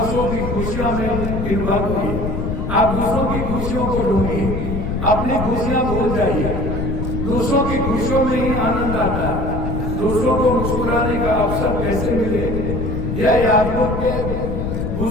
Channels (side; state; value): left; noise; rumble, 2 dB below the sound